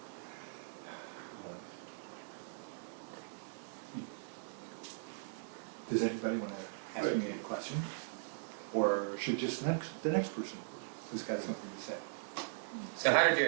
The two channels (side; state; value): left; silent; digital silence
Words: Does anybody want to ask me any question? Or should just the next person who's got something to say? So how did your